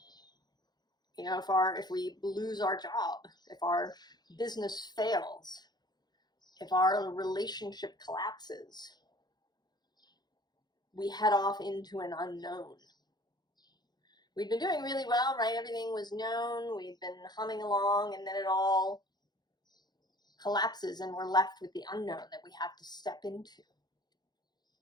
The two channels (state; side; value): late; right; 0.20 ms